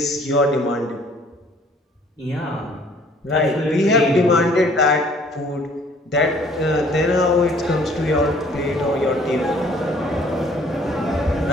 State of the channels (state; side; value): normal; both; correlation 0.57